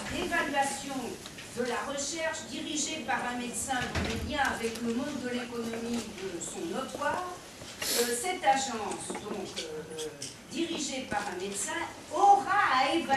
d'évaluation de la recherche dirigée par un médecin dont les liens avec le monde de l'économie sont notoires, cette agence, donc dirigée par un médecin, aura à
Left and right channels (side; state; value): both; identical; correlation 1.00